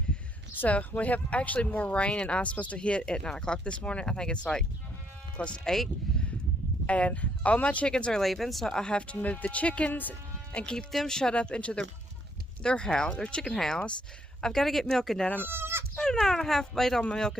So we have actually more rain and ice supposed to hit at 9 o'clock this morning. I think it's like close to 8. And all my chickens are leaving, so I have to move the chickens and keep them shut up into their house, their chicken house. I've got to get milking done. I'm about an hour and a half late on my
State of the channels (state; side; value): normal; both; correlation 0.70